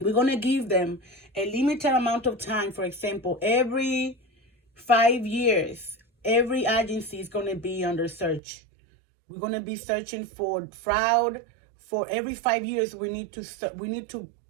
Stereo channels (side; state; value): left; drops out; at 8.4 s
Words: going to give them a limited amount of time. For example, every 5 years, every agency is going to be under search. We're going to be searching for fraud. For every 5 years, we need to